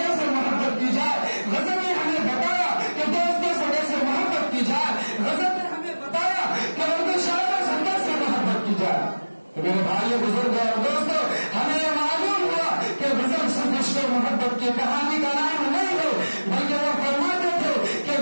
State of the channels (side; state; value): both; inverted; correlation -1.00